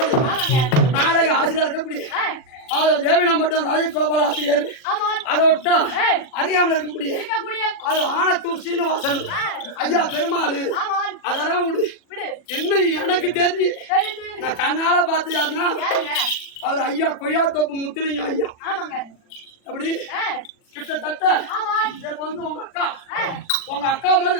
நாடக ஆசிரியர் இருக்கக்கூடிய தேவினா மட்டும் ராஜகோபால் ஆசிரியர். அதை விட்டா அறியாமல் இருக்கக்கூடிய அது ஆனத்தூர் சீனிவாசன் ஐயா பெருமாள். அதெல்லாம் விடு. என்ன எனக்கு தெரிஞ்சு நான் கண்ணால பார்த்து யாருன்னா அவர் ஐயா கொய்யாத்தோப்பு முத்துலிங்கம் ஐயா. அப்படி கிட்டத்தட்ட வந்து உங்க அக்கா மாதிரி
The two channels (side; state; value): right; late; 40 ms